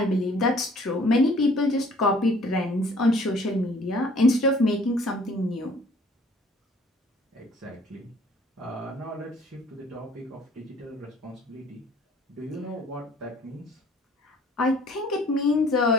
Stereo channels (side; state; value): both; normal; correlation 0.55